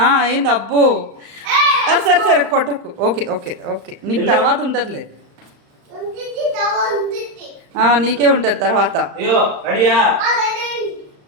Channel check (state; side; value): late; left; 35 ms